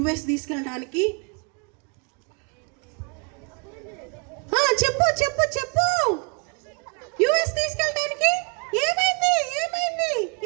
తీసుకెళ్ళడానికి. చెప్పు చెప్పు చెప్పు. US తీసుకెళ్ళడానికి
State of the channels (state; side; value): quieter; left; 35.3 dB